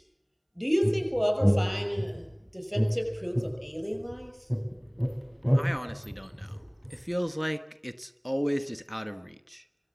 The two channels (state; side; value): identical; both; correlation 1.00